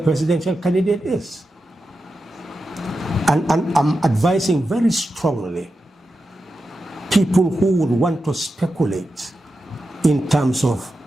candidate is. And I'm advising very strongly people who would want to speculate in terms of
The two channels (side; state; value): both; normal; correlation 0.90